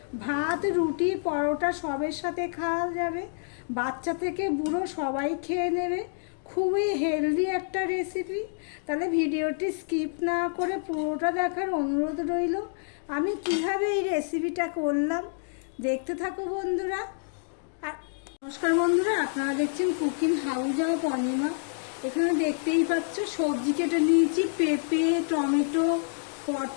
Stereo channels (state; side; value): silent; right; digital silence